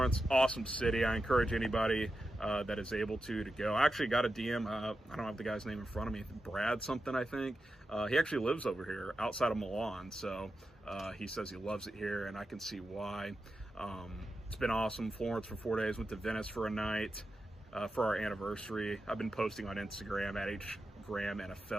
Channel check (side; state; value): both; normal; correlation 0.90